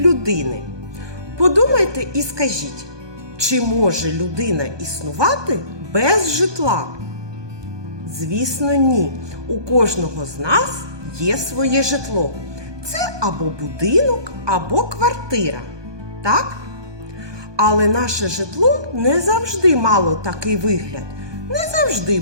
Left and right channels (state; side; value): late; left; 1.2 ms